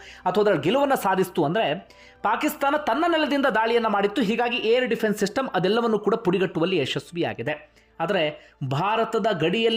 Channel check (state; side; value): identical; both; correlation 1.00